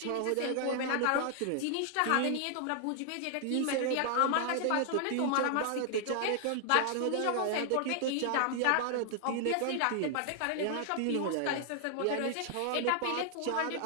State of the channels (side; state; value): both; different; correlation 0.00